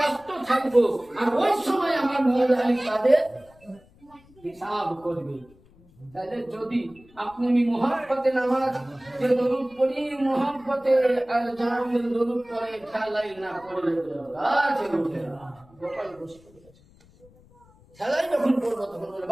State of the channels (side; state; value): left; noise; rumble, 28 dB below the sound